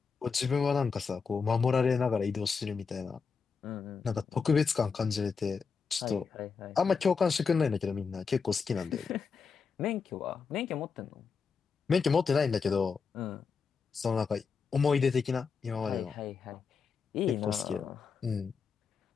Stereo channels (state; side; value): quieter; right; 5.5 dB